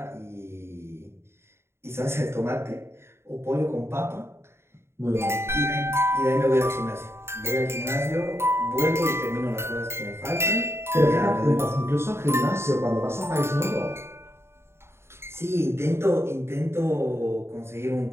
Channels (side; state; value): left; late; 0.12 ms